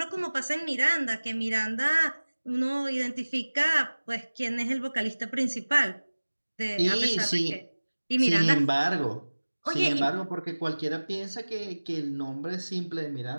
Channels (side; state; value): both; inverted; correlation -1.00